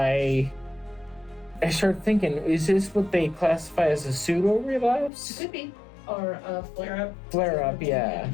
started thinking, is this what they classify as a pseudo relapse? It could be, or a flare-up. Flare-up, yeah.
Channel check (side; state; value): right; drops out; at 5.1 s